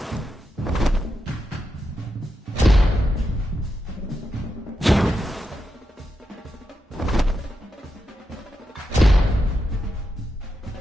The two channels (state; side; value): normal; both; correlation 0.86